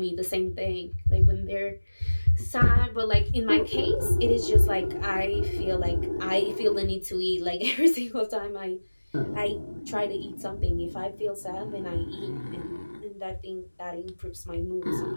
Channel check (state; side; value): inverted; both; correlation -1.00